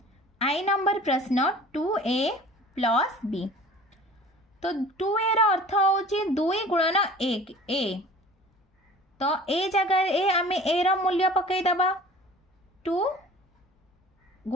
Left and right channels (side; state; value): both; normal; correlation 0.45